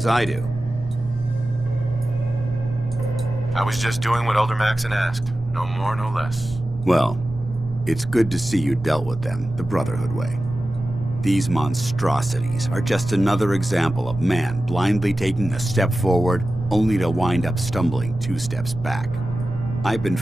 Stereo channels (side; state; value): both; normal; correlation 0.94